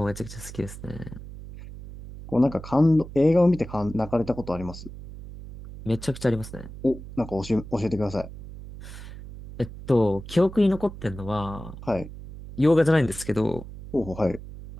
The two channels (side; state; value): right; noise; hum, 13 dB below the sound